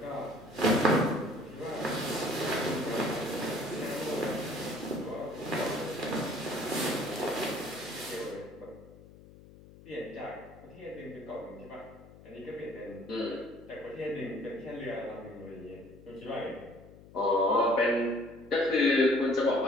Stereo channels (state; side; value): noise; left; hum, 20 dB below the sound